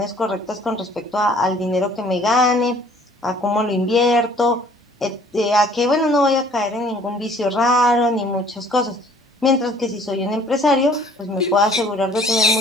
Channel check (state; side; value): normal; both; correlation 0.55